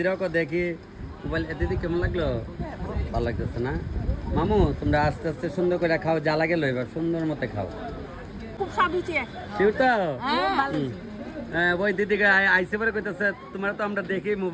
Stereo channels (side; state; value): both; identical; correlation 1.00